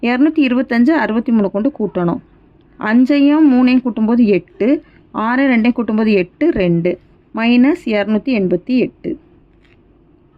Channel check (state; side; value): identical; both; correlation 1.00